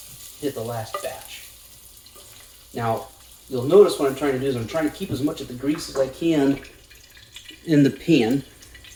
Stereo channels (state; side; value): identical; both; correlation 1.00